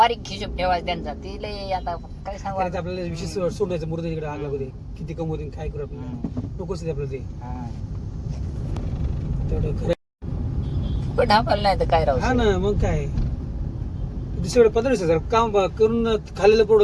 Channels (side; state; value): both; identical; correlation 1.00